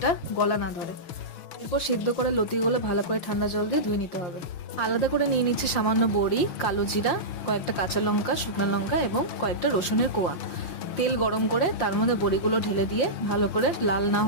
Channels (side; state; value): right; late; 5.7 ms